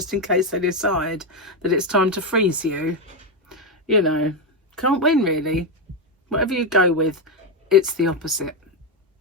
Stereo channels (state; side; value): normal; both; correlation 0.07